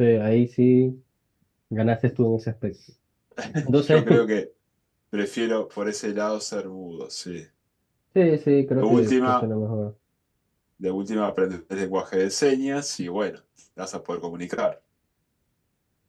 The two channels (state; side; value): identical; both; correlation 1.00